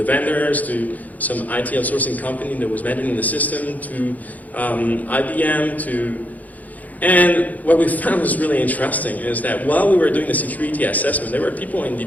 some IT outsourcing company that was managing the system, to IBM, and what we found was really interesting is that while we were doing the security assessment, there were people in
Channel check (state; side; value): late; right; 0.078 ms